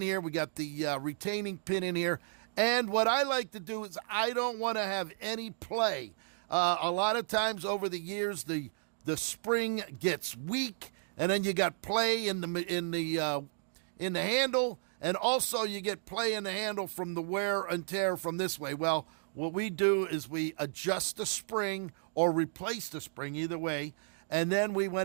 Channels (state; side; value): silent; left; digital silence